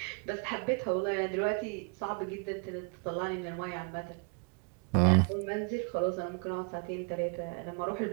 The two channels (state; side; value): quieter; left; 37.0 dB